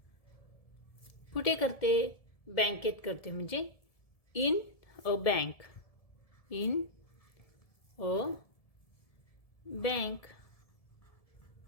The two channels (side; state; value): right; late; 1.7 ms